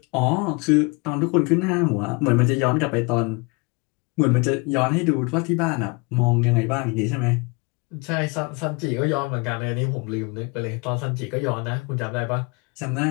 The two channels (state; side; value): quieter; right; 29.0 dB